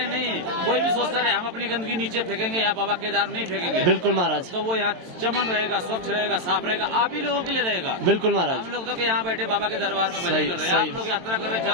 नहीं, कोई भी सोचता रहे हम अपनी गंदगी नीचे फेंकेंगे, यहाँ बाबा केदार नहीं फेंकेंगे, बिल्कुल महाराज तो वो यहाँ चमन रहेगा, स्वच्छ रहेगा, साफ रहेगा, आप ही लोगों के लिए रहेगा। बिल्कुल महाराज हम लोग तो यहाँ बैठे बाबा के दरबार में भजन सही- कर रहे हैं, सही। आप लोग यात्रा कर रहे हैं,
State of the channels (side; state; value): left; late; 22 ms